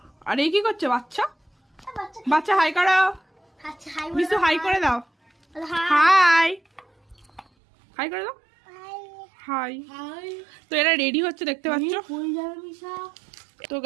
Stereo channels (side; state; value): left; drops out; at 7.5 s